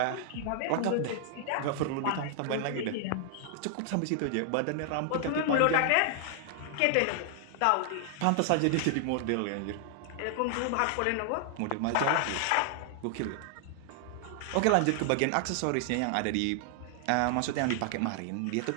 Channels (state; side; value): different; both; correlation 0.00